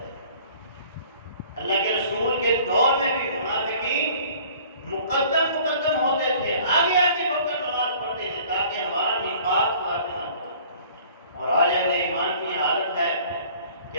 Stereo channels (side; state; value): both; inverted; correlation -0.51